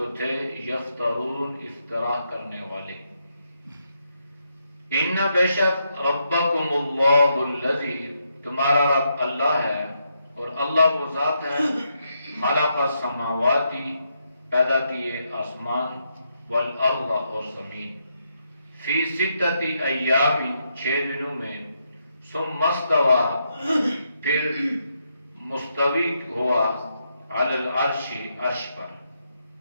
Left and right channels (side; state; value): both; inverted; correlation -0.80